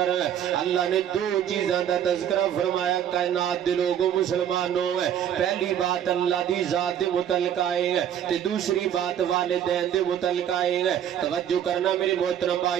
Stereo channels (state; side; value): quieter; left; 9.8 dB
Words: اللہ نے دو چیزاں دا تذکرہ فرمایا کائنات دے لوگوں مسلمانوں. پہلی بات اللہ دی ذات دے متعلق آئے تے دوسری بات والدین دے متعلق آئے. توجہ کرنا میرے محترم